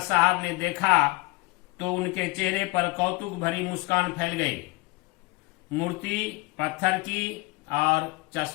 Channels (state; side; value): quieter; right; 23.9 dB